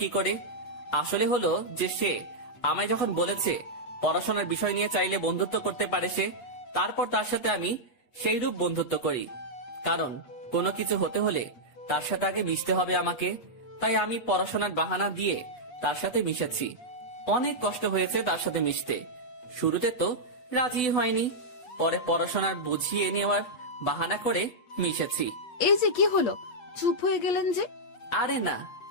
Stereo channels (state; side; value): late; right; 8.4 ms